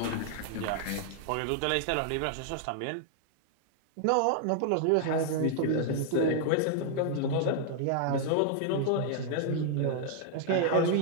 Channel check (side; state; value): both; different; correlation 0.00